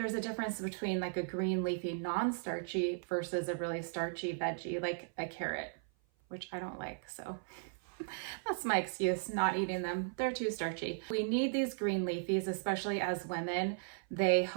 a difference between like a green leafy non-starchy versus a really starchy veggie like a carrot, which I don't like, so that's my excuse, not eating them. They're too starchy. We need these green leafies, especially as women. They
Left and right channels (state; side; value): silent; left; 53 dB below the other